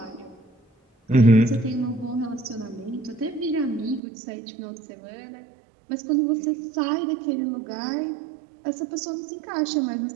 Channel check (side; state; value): left; drops out; at 4.0 s